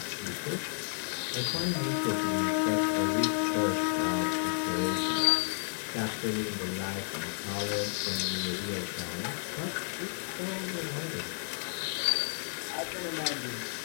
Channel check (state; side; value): silent; right; 57 dB below the other